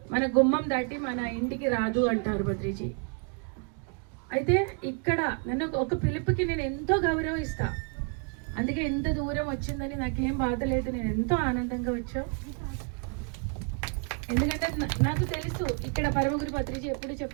మన గుమ్మం దాటి మన ఇంటికి రాదు అంటారు పత్రిజీ. అయితే ఇక్కడ నన్ను ఒక పిలుపుకి నేను ఎంతో గౌరవం ఇస్తా. అందుకే ఎంత దూరం వచ్చిందని నాకేం బాధ లేదు, నేను ఎంతో ఆనందంగా వచ్చావు. ఎందుకంటే నాకు తెలుసు ఇక్కడ పరమగురు పత్రిజీ ఎప్పుడు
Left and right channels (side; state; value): left; quieter; 39.2 dB